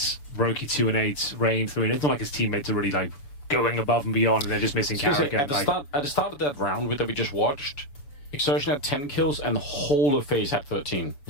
Roki 2-8, Rain 3. It's not like his teammates are really like going above and beyond, and they're just missing Kerrigan. At the start of that round that we just watched, Exertion had 10 kills and the whole of FaZe had 13.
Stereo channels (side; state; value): right; late; 6.9 ms